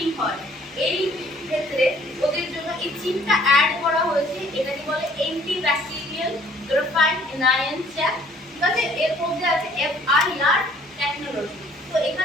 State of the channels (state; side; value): normal; both; correlation 0.58